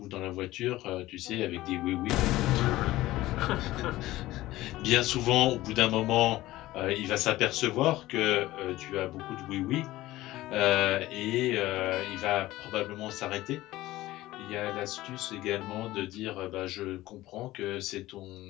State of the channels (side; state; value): right; quieter; 16.9 dB